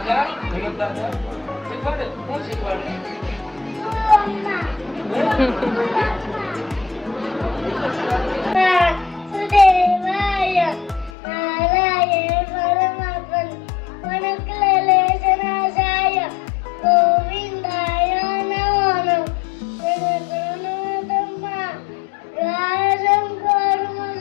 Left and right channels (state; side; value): drops out; right; at 11.1 s